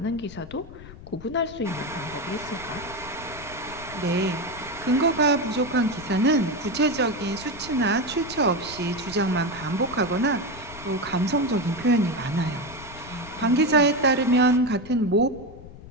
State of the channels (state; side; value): noise; left; rumble, 16 dB below the sound